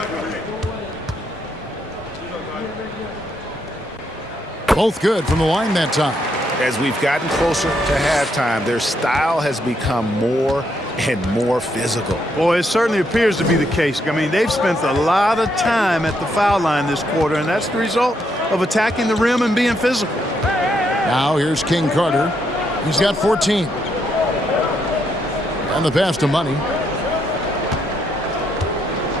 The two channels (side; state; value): both; normal; correlation 0.76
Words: Both good from the line that time. As we've gotten closer to halftime, their style has become more and more physical. Boy, it certainly appears to be the case. I mean, they've spent a lot of time at the foul line this quarter, and that's the result of attacking the rim and being physical. Now here's King Carter. He's got 14. And the pass to Money.